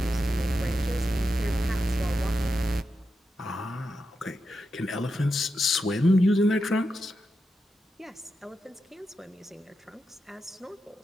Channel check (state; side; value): normal; both; correlation 0.88